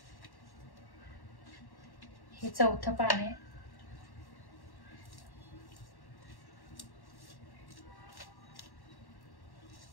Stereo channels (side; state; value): right; late; 1.1 ms